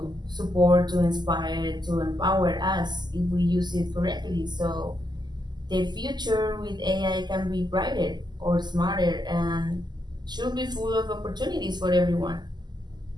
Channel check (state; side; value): late; left; 0.21 ms